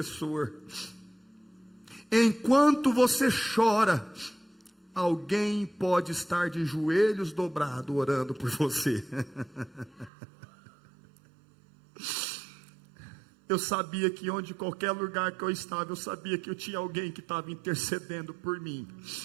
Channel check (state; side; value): drops out; left; at 10.1 s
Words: Enquanto você chora, alguém pode estar de joelhos dobrados orando por você. Eu sabia que onde qualquer lugar que eu estava, eu sabia que eu tinha alguém que estava intercedendo por mim.